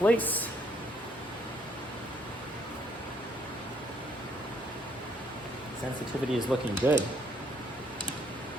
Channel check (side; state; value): both; normal; correlation 0.67